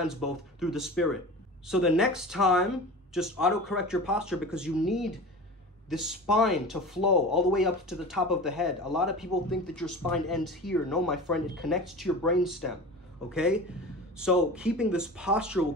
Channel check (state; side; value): normal; both; correlation 0.34